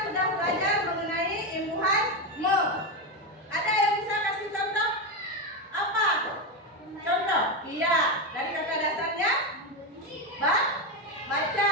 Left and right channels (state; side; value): normal; both; correlation 0.12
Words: sudah belajar mengenai imbuhan me. Ada yang bisa kasih contoh? Apa? Contoh? Iya. Dari kata dasarnya? Baca.